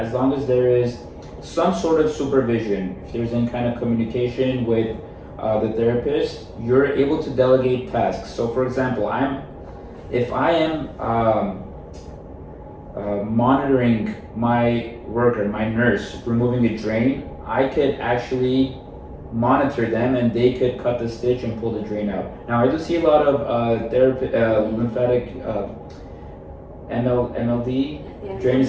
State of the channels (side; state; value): both; identical; correlation 1.00